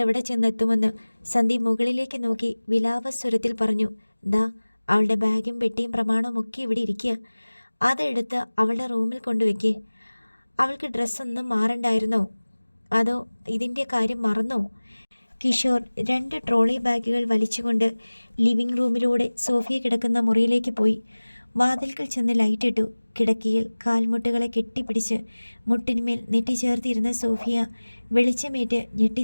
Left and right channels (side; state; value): both; inverted; correlation -1.00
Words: ചെന്നെത്തുമെന്ന്. സന്ദീപ് മുകളിലേക്ക് നോക്കി വിലാപസ്വരത്തിൽ പറഞ്ഞു. ദാ, അവളുടെ ബാഗും പെട്ടിയും പ്രമാണവും ഒക്കെ ഇവിടെ ഇരിക്കുക. അതെടുത്ത് അവളുടെ റൂമിൽ കൊണ്ടുവയ്ക്കേ. അവൾക്ക് ഡ്രസ്സൊന്നും മാറണ്ടായിരുന്നോ? അതോ ഇതിൻ്റെ കാര്യം മറന്നോ? കിഷോർ 2 ട്രോളി ബാഗുകൾ വലിച്ചുകൊണ്ട് ലിവിംഗ് റൂമിലൂടെ സോഫിയ കിടക്കുന്ന മുറിയിലേക്ക് പോയി. വാതിൽക്കൽ ചെന്ന് ലൈറ്റിട്ടു. കിടക്കയിൽ കാൽമുട്ടുകളെ കെട്ടിപ്പിടിച്ച് മുട്ടിന്മേൽ നെറ്റിച്ചേർത്തിരുന്ന സോഫിയ വെളിച്ചമേറ്റ്